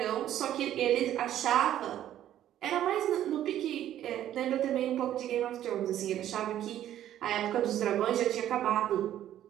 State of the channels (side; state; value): left; quieter; 11.8 dB